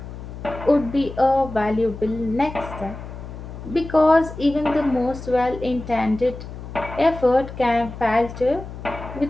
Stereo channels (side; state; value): left; noise; hum, 11 dB below the sound